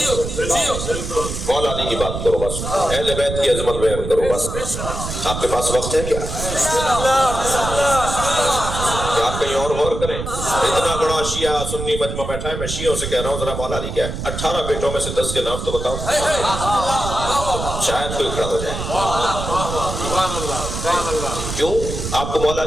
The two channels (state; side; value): noise; right; rumble, 6 dB below the sound